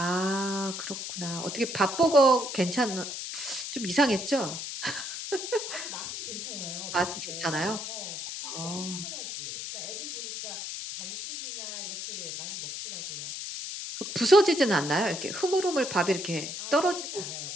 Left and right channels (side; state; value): left; noise; hiss, 6 dB below the sound